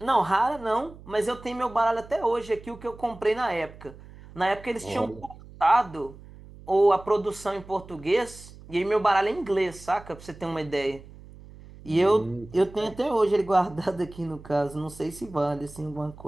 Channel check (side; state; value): right; noise; hum, 19 dB below the sound